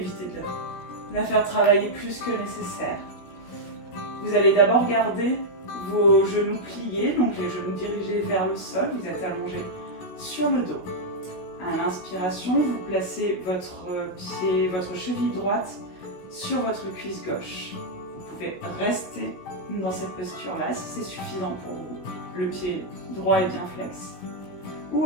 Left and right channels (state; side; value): late; right; 17 ms